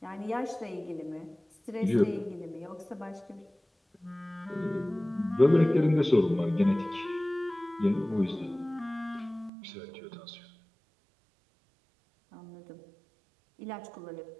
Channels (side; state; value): left; drops out; at 9.5 s